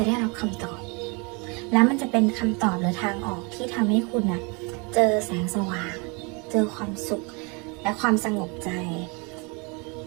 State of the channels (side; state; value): left; quieter; 31.2 dB